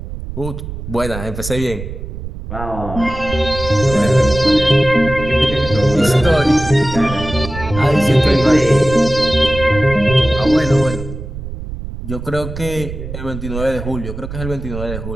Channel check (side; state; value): right; noise; rumble, 9 dB below the sound